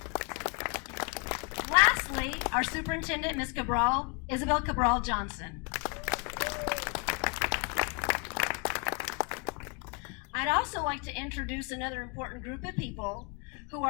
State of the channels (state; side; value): quieter; right; 33.5 dB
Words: Lastly, our superintendent, Miss Isabel Cabral Johnson. I'd also like to introduce another important group of people who